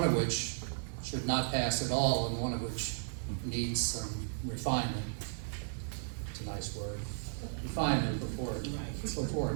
of which should not pass at all, and one of which needs some refinement. It's a nice word, refinement before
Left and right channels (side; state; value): left; silent; 54 dB below the other